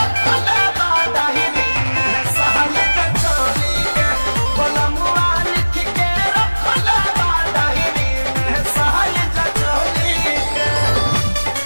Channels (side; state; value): both; inverted; correlation -1.00